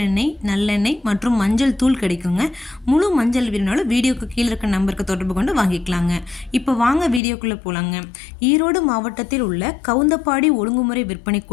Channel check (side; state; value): right; drops out; at 7.2 s